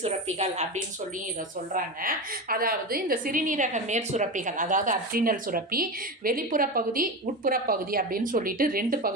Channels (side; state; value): both; normal; correlation 0.21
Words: சுரப்பிகள் அப்படின்னு சொல்லி இதை சொல்கிறாங்க. அதாவது இந்த சிறுநீரக மேற் சுரப்பிகள், அதாவது அட்ரினல் சுரப்பி வெளிப்புற பகுதி, உட்புற பகுதி அப்படின்னு சொல்லிட்டு ரெண்டு